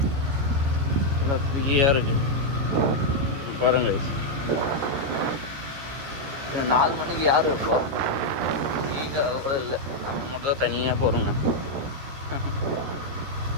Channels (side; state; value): left; late; 14 ms